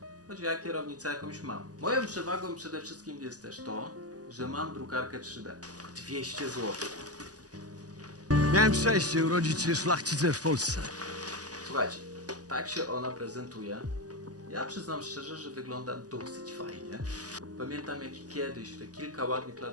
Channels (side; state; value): left; late; 0.67 ms